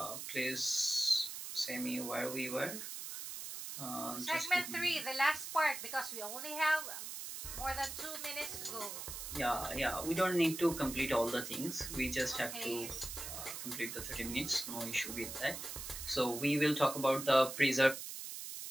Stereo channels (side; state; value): right; noise; hiss, 7 dB below the sound